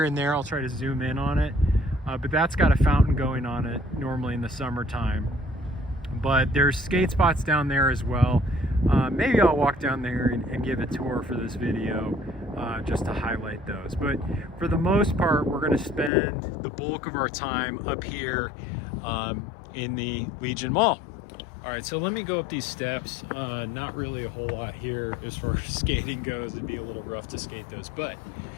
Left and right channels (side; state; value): right; drops out; at 16.1 s